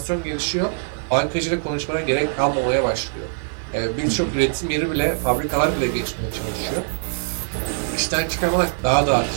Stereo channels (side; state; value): left; silent; digital silence